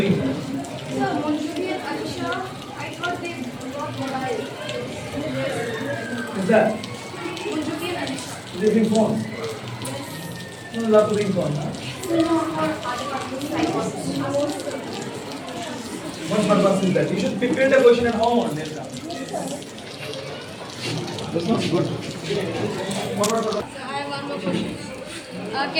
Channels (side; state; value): both; identical; correlation 1.00